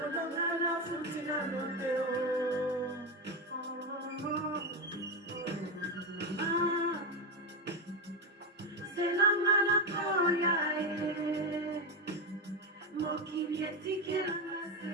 nafuti nano te zelanga nakoya ye mokili etikelanga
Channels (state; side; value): normal; both; correlation 0.12